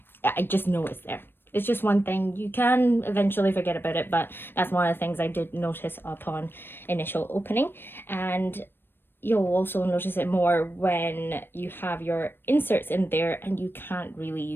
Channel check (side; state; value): right; late; 0.099 ms